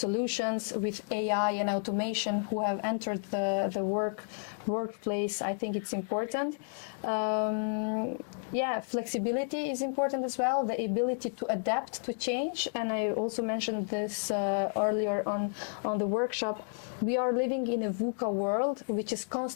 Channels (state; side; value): silent; right; digital silence